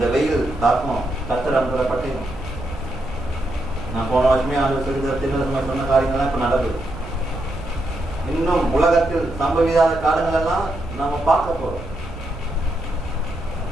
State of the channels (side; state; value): right; noise; rumble, 13 dB below the sound